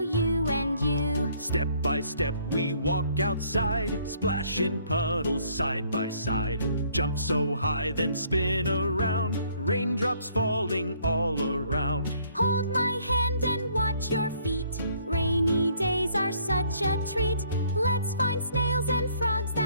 and you. Step by step we walk outside, splash in puddles side by side. Jump so high then spin around, raindrops falling all around. Hold my hand and watch your feet. Rainy days are such a treat. Let's find snails and frogs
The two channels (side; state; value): both; inverted; correlation -0.64